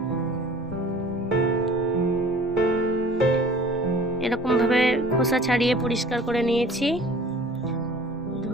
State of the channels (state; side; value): normal; both; correlation 0.47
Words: এরকম ভাবে খোসা ছাড়িয়ে পরিষ্কার করে নিয়েছি।